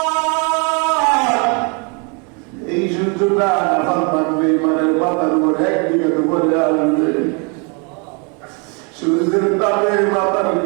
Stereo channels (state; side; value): quieter; left; 34.5 dB